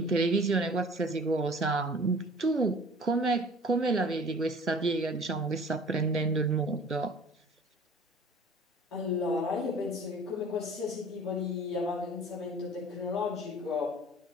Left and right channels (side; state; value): both; normal; correlation 0.47